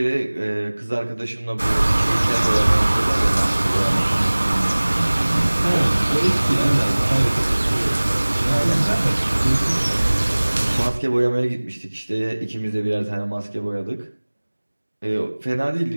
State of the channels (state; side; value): inverted; both; correlation -1.00